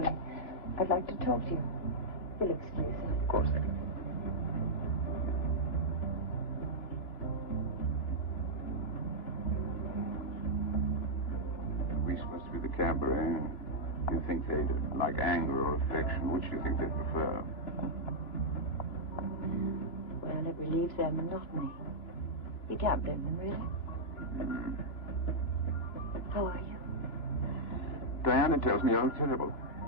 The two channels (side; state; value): right; late; 2.9 ms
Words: I'd like to talk to you. You'll excuse me. Of course I can. We supposed to be the cabaret. Do you think they'd like anger or affection? Which do you think they'd prefer? Well, it relieves their monotony. You can't blame them, really. How are you? Diana tells me you're terrible.